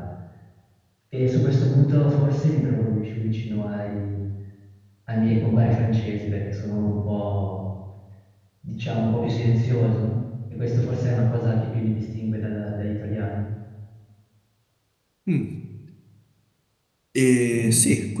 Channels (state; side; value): identical; both; correlation 1.00